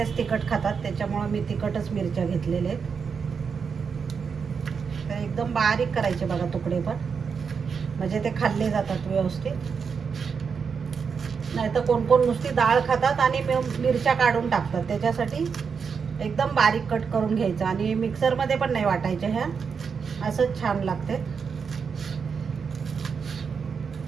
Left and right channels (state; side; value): quieter; left; 6.0 dB